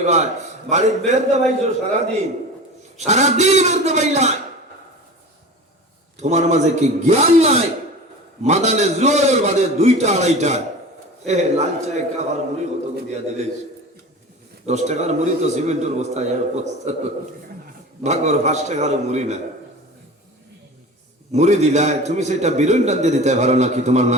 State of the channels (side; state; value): both; normal; correlation 0.35